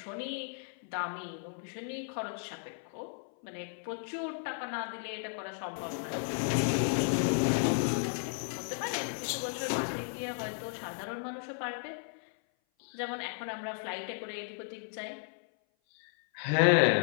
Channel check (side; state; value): right; silent; 55 dB below the other